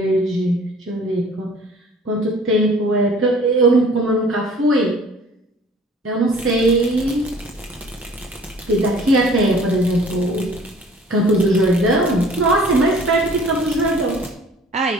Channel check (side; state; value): both; normal; correlation 0.51